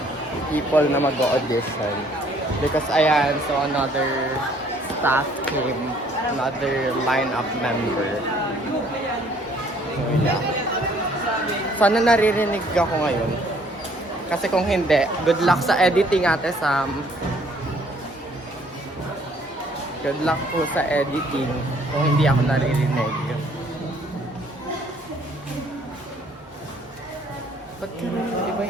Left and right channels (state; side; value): normal; both; correlation 0.61